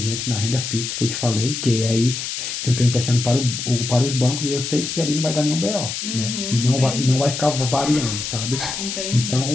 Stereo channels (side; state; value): left; noise; hiss, 5 dB below the sound